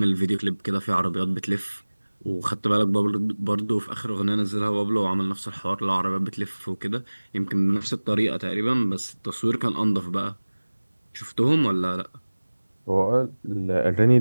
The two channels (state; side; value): inverted; both; correlation -1.00